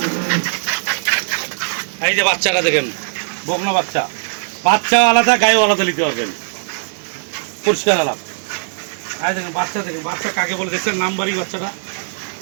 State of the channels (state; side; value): silent; left; 61 dB below the other